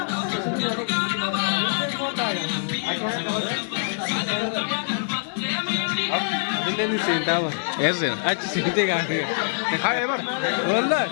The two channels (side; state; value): right; silent; digital silence